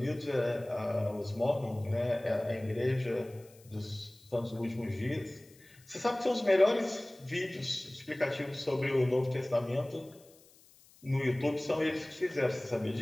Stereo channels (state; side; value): noise; left; hiss, 27 dB below the sound